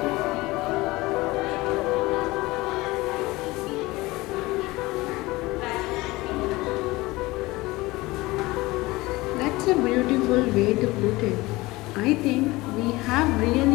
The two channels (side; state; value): right; quieter; 20.7 dB